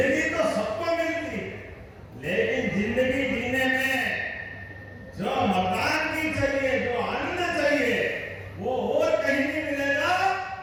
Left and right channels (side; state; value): both; identical; correlation 1.00